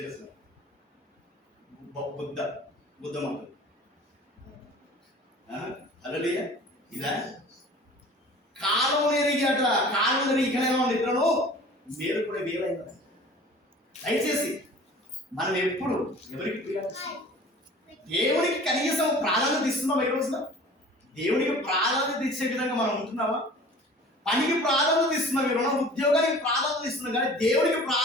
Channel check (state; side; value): normal; both; correlation 0.44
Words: బుద్ధ మాటలు హల్లెలూయా. ఇదా కాలం ఎరిగాట, కాలం ఎరిగి ఇక్కడ ఇద్దరు మీరు కూడా వేరైందా. దయచేసి మనం ఎప్పుడు ఎవరికి దేవునికి కనీసం ప్రాధాన్యత ఇస్తున్నాం. ఈ రోజున దేవునికి ప్రాధాన్యత ఇచ్చే విధంగా మనం ఉంటున్నామా? పనికి ప్రాధాన్యత ఇస్తున్నాం, మీరు ఉద్యోగానికి ప్రాధాన్యత ఇస్తున్నాం, కానీ దేవునికి